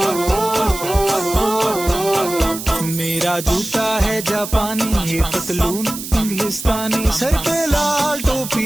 मेरा जूता है जापानी ये पतलून इंग्लिस्तानी सर पे लाल टोपी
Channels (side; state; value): right; noise; hiss, 9 dB below the sound